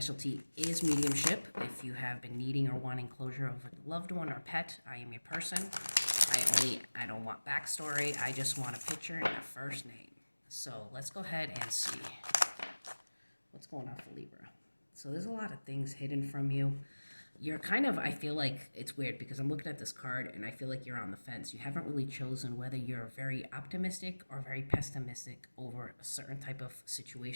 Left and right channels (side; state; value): both; inverted; correlation -1.00